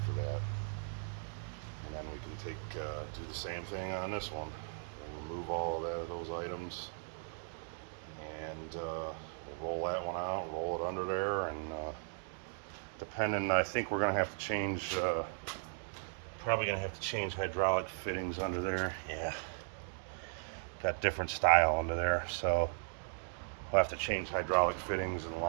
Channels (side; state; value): left; silent; digital silence